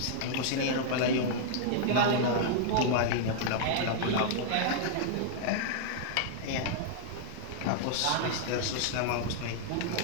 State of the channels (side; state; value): both; different; correlation -0.01